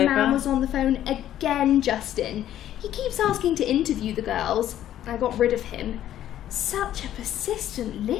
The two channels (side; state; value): right; quieter; 11.9 dB